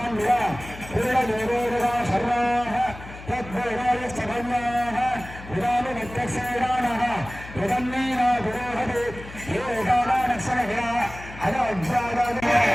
விரா புருடதேவோருவா சர்வாஹ தத்வேதாய சகன்யாஹ விராலு நித்தசேடானஹ விதன்னீனா புரோஹதே ஏகானா நக்ஷணஹா அத அஜ்ஜாதாதே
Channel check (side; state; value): left; noise; hum, 15 dB below the sound